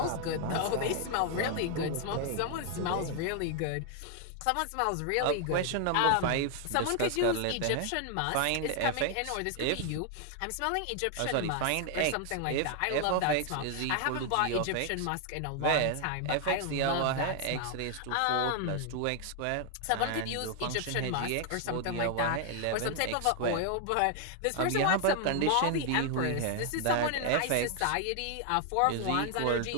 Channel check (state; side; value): different; both; correlation 0.00